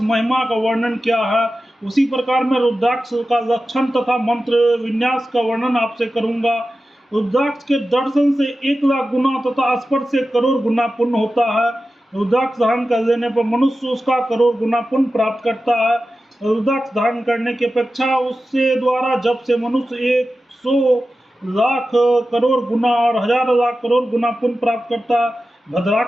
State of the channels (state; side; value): normal; both; correlation 0.93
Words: महिमा का वर्णन किया है, उसी प्रकार मैं रुद्राक्ष का लक्षण तथा मंत्र विन्यास का वर्णन आपसे करूंगा। रुद्राक्ष के दर्शन से 1,00,000 गुना तथा स्पर्श से करोड़ गुना पुण्य होता है। रुद्राक्ष धारण कर लेने पर मनुष्य उसका करोड़ गुना पुण्य प्राप्त करता है। रुद्राक्ष धारण करने की अपेक्षा उससे द्वारा जब से मनुष्य 100,00,000 करोड़ गुना और 1,000,000 करोड़ गुना पुण्य प्राप्त करता है।